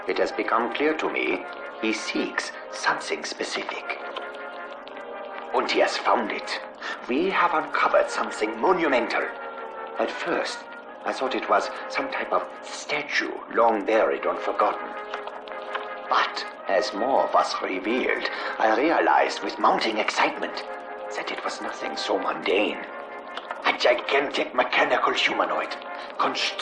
It has become clear to me he seeks something specific. And he has found it. We have uncovered something monumental. At first, I thought it was some type of statue long buried and forgotten. But as more was revealed, I realized with mounting excitement that it was nothing so mundane. A gigantic mechanical humanoid,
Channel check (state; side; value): identical; both; correlation 1.00